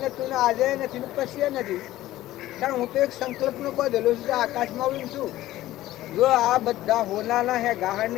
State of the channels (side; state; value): right; quieter; 15.3 dB